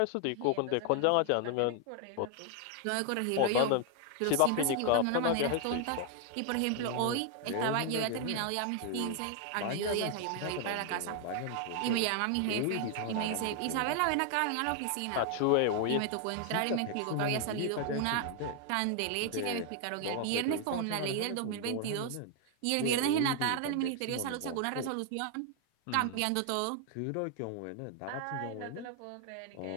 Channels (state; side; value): different; both; correlation 0.00